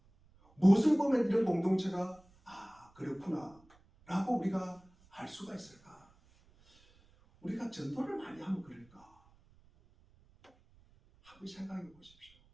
무엇을 보면 이런 공동체가 그렇구나 라고 우리가 알 수가 있을까? 우리가 전도를 많이 하면 그럴까? 한번 생각해 보십시오.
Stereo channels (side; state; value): right; noise; rumble, 29 dB below the sound